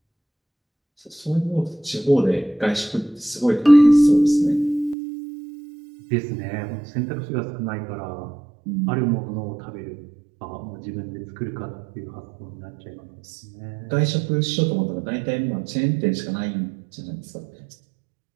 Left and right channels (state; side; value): drops out; left; at 5.0 s